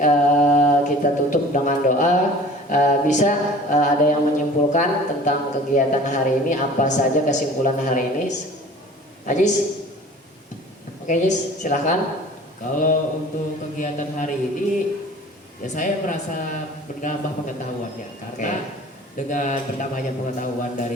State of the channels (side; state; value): both; normal; correlation 0.45